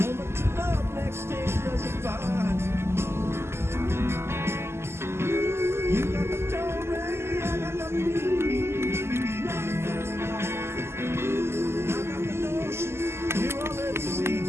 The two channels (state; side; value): late; left; 0.12 ms